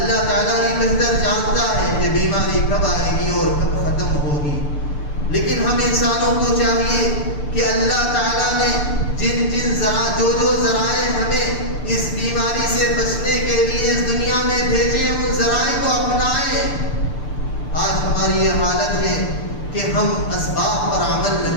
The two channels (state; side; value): late; right; 6.8 ms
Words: تعالیٰ ہی بہتر جانتا ہے کہ بیماری کب آئے گی اور کب ختم ہوگی. لیکن ہم انسانوں کو چاہیے کہ اللہ تعالیٰ نے جو ذرائع ہمیں اس بیماری سے بچنے کے لیے اس دنیا میں بھیجے، ان ذرائع کو اپنائیں. آج ہماری یہ حالت ہے کہ ہم اسباب پر عمل